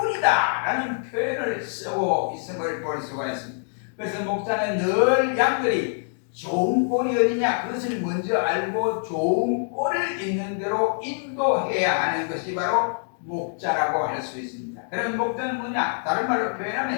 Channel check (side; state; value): right; silent; digital silence